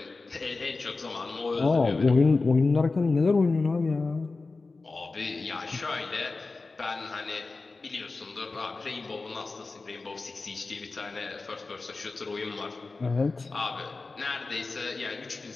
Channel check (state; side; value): quieter; right; 3.7 dB